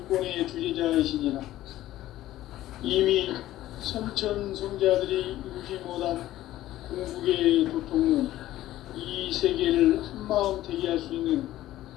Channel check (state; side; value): quieter; right; 14.6 dB